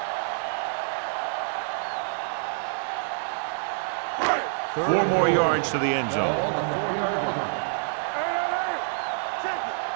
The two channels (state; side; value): silent; left; digital silence